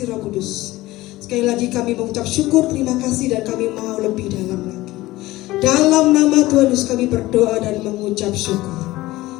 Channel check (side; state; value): right; quieter; 18.0 dB